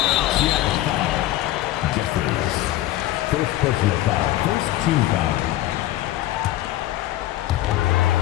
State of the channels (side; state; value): right; quieter; 14.9 dB